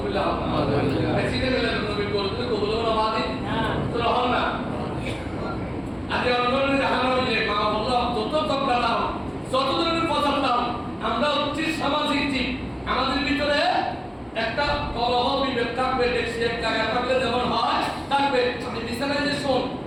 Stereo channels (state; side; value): identical; both; correlation 1.00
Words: শীতের মিলাদের নবীর গরু দিতে কবুল হলো না তো রহমান না। আজকে অন্যদের দেখানো হইলে মা বললো যত তকরা দাও যত ধরনের পছন্দ দাও, আমরা হচ্ছি সামাজিক জীব। আমাদের ভিতরে একটা কলহ বিভেদ থাকবে, দেখছি এক জায়গায় থাকলে যেমন হয় থাকবে। আমি বিছানায় যে শোন